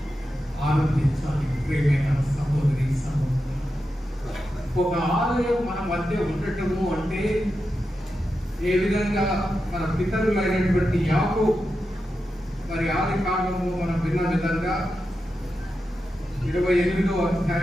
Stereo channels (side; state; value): both; normal; correlation 0.89